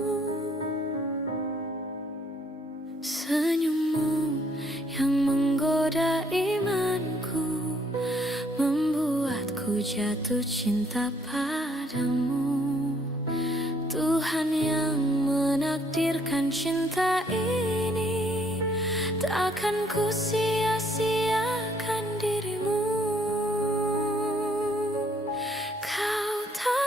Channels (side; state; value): both; normal; correlation 0.66